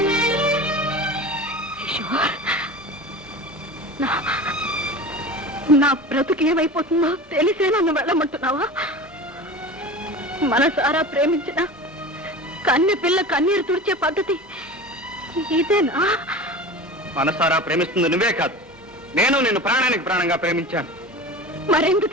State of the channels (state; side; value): normal; both; correlation 0.33